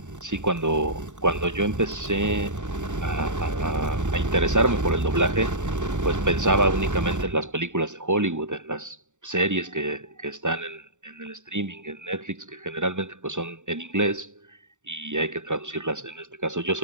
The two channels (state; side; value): late; left; 0.85 ms